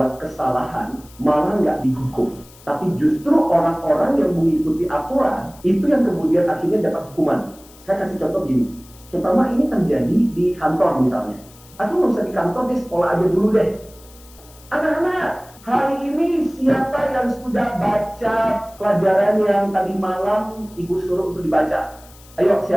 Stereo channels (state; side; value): noise; left; hiss, 24 dB below the sound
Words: kesalahan malah nggak dihukum. Tapi justru orang-orang yang mengikuti aturan, itu yang kemudian akhirnya dapat hukuman. Saya kasih contoh gini, terutama ini terjadi di kantor misalnya. Atau nggak usah di kantor, di sekolah aja dulu deh. Anak-anak, hari ini siapa yang sudah baca pelajaran yang tadi malam ibu suruh untuk dibaca? Ayo,